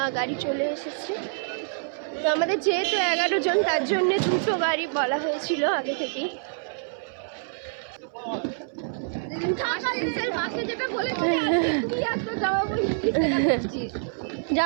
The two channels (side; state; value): left; silent; 60 dB below the other